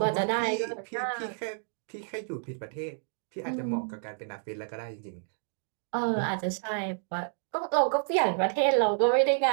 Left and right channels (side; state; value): left; silent; digital silence